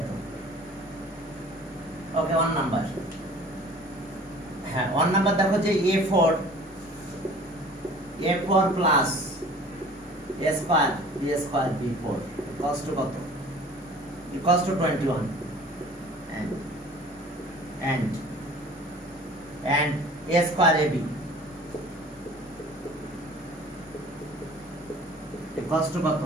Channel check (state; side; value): normal; both; correlation 0.47